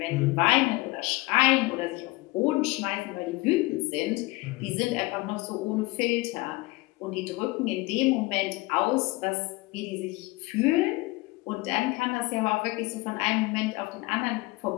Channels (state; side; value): quieter; right; 21.8 dB